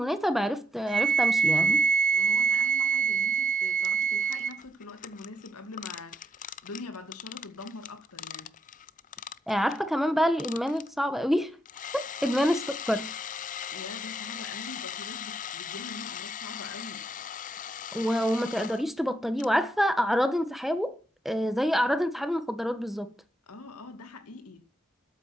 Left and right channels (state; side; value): normal; both; correlation 0.79